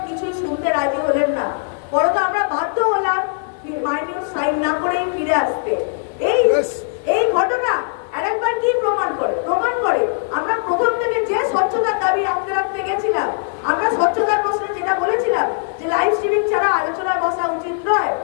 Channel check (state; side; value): silent; right; 56 dB below the other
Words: কিছুই শুনতে রাজি হলেন না। বরং আমরা বাধ্য হলাম মাইনর সাইন না করেই ফিরে আসতে। এই ঘটনা আরেকবার কি প্রমাণ করে? প্রমাণ করে আমরা প্রথম থেকে যে স্বচ্ছতার দাবি রাখতে গেছিলাম, আমরা স্বচ্ছতার প্রশ্নে যেটা বলেছিলাম যে লাইভ স্ট্রিমিং ছাড়া আলোচনায় বসা উচিত নয়,